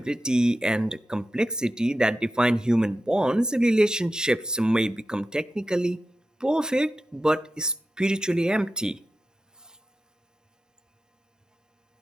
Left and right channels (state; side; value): normal; both; correlation 0.91